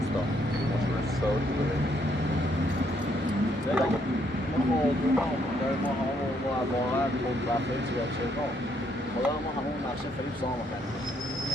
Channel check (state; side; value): normal; both; correlation 0.71